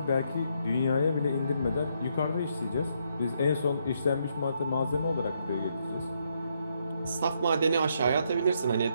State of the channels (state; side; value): inverted; both; correlation -0.75